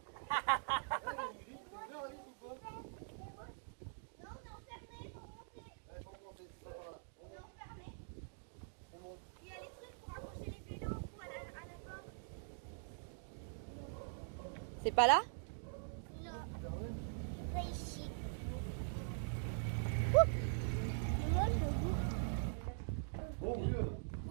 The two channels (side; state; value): left; silent; digital silence